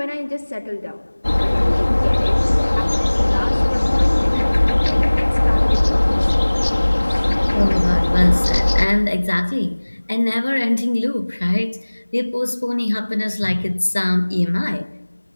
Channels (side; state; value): both; inverted; correlation -1.00